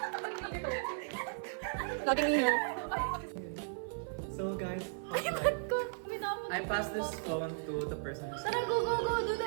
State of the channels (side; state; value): left; silent; 54 dB below the other